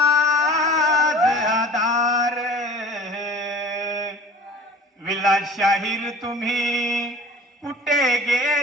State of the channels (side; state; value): both; normal; correlation 0.43